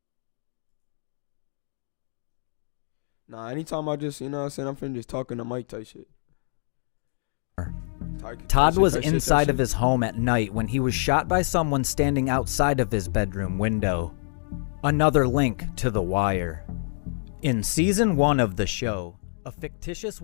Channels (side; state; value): right; silent; digital silence